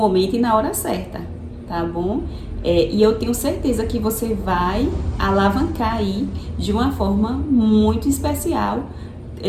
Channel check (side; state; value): both; identical; correlation 1.00